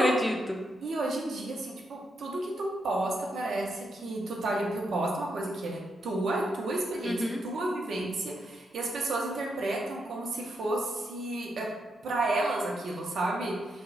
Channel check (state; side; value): normal; both; correlation 0.81